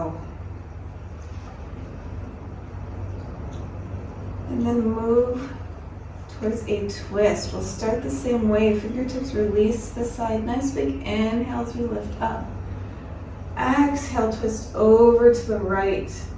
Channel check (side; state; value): both; identical; correlation 1.00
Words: And then move towards a twist. We'll start the same way. Fingertips release to the side. Nice big inhale as we lift up. Exhale, twist over to the right.